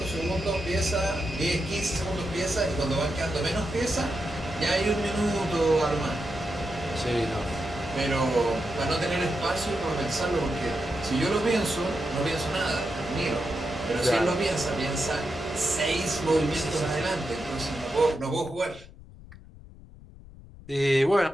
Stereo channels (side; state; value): left; noise; rumble, 19 dB below the sound